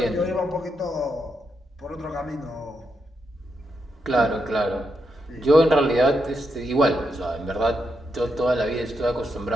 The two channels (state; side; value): normal; both; correlation 0.83